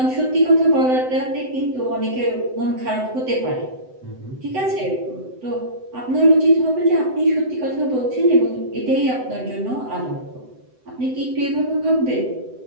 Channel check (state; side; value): late; left; 7.9 ms